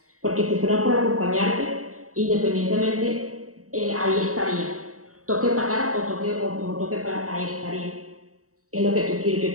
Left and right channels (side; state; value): left; late; 0.65 ms